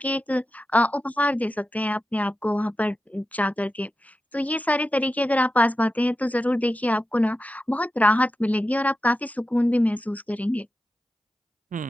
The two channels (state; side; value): normal; both; correlation 0.91